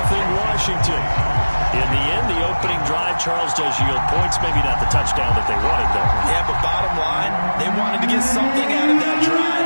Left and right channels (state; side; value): inverted; both; correlation -1.00